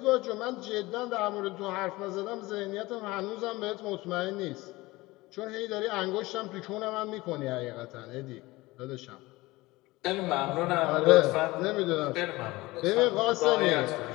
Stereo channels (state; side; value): quieter; right; 20.5 dB